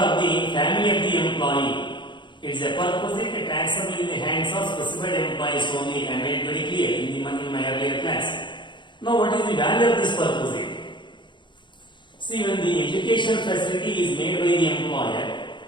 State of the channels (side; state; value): right; late; 0.23 ms